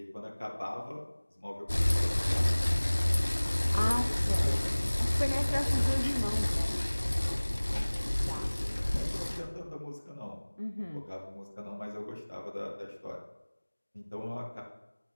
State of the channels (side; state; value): both; inverted; correlation -1.00